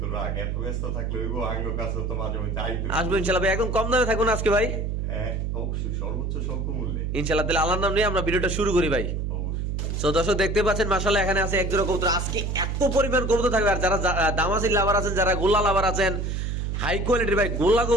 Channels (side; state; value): right; noise; hum, 1 dB below the sound